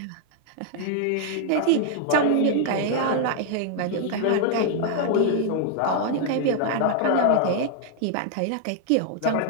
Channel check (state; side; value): different; both; correlation 0.00